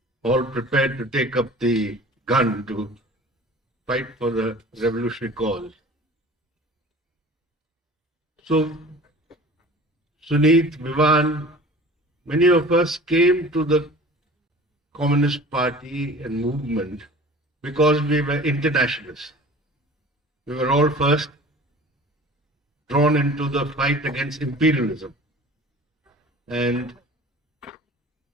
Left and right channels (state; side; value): normal; both; correlation 0.43